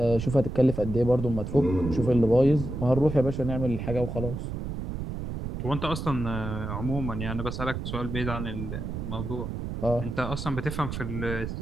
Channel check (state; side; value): noise; right; rumble, 5 dB below the sound